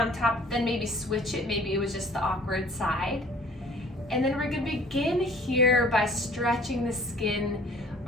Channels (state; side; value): normal; both; correlation 0.52